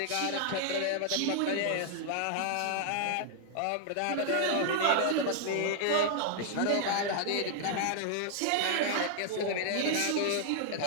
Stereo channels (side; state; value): both; different; correlation 0.00